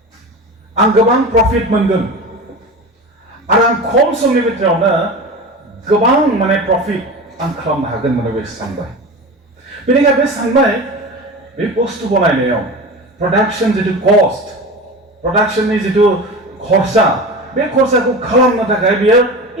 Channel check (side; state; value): both; normal; correlation 0.30